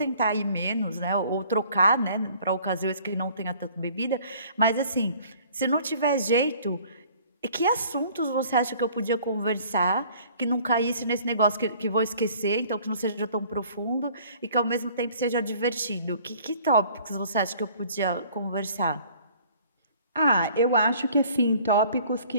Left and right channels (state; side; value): inverted; both; correlation -0.54